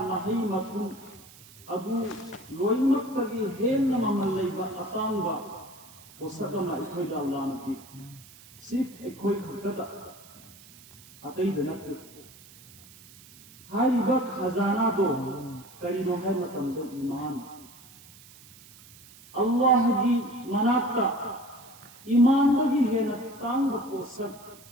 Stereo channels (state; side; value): noise; right; hiss, 22 dB below the sound